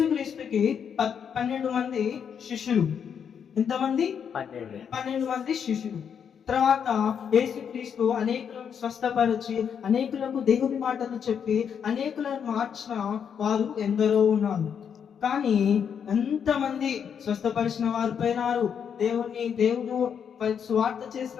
12 మంది శిష్యులు. ఎంతమంది? 12 మంది శిష్యులు. తర్వాత యేసుక్రీస్తు అనేకులను స్వస్థపరిచి, అనేకులకు దేవుని మాటలు చెప్పి, అనేకులను మార్చిన వారు ఎందరో ఉన్నారు. కానీ ఎంతమంది స్వస్థపరిచిన వారు పోయినారు, దేవుడు స్వార్థ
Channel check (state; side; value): quieter; right; 7.6 dB